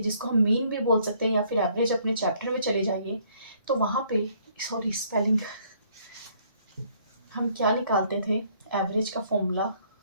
जिसको हम मीन भी बोल सकते हैं या फिर एवरेज। अपने चैप्टर में चले जाइए तो वहाँ पे, सॉरी स्पेलिंग, हम क्या निकालते थे, एवरेज का फॉर्मूला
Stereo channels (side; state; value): both; inverted; correlation -0.64